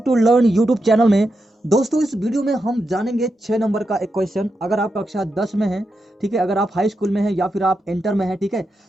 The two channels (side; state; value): both; normal; correlation 0.86